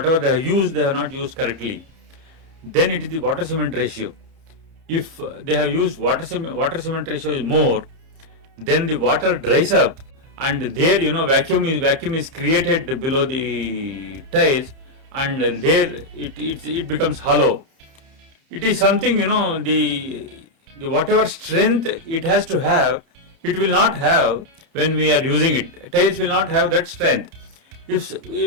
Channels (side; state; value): left; late; 30 ms